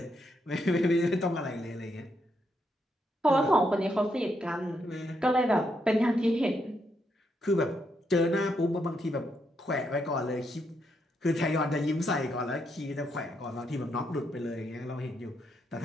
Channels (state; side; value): normal; both; correlation 0.79